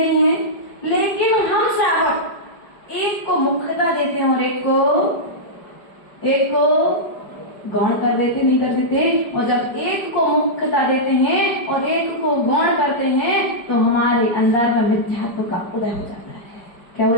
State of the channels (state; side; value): late; right; 5.0 ms